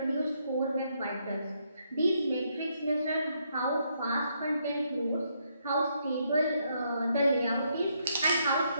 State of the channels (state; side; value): inverted; both; correlation -0.75